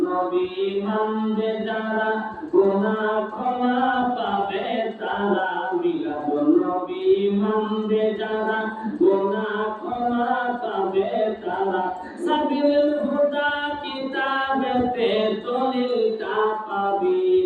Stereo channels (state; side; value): identical; both; correlation 1.00